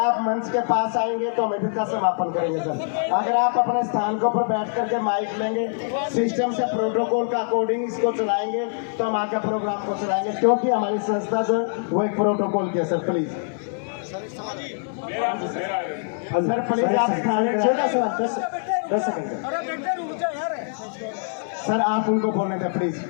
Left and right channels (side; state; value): right; silent; digital silence